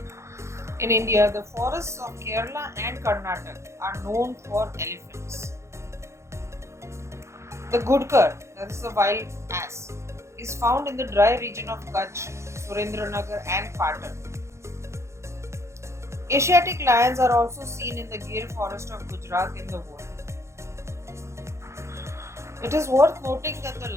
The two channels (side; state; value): left; late; 0.14 ms